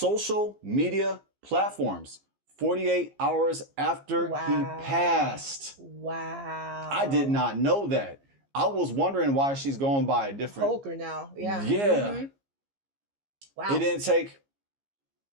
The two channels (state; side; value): late; left; 15 ms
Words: media platforms 48 hours after he passed. Wow. I did not know that. I was wondering why she's going by a different Holker now. Yeah. Yeah. Wow. It didn't take